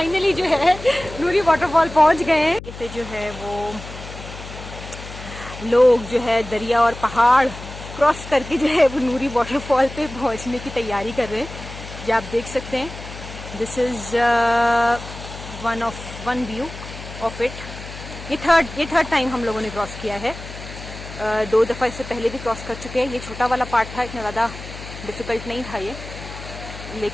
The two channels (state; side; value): noise; left; hum, 12 dB below the sound